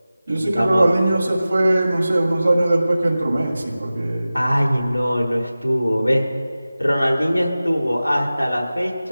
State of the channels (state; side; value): inverted; both; correlation -0.96